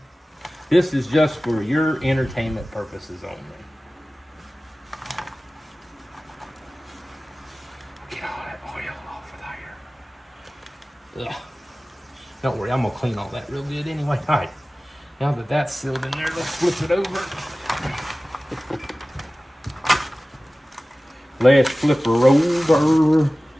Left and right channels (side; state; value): both; normal; correlation 0.97